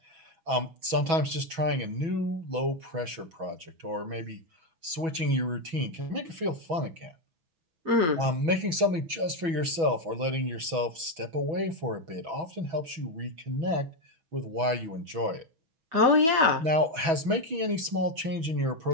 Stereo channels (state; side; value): late; left; 6.1 ms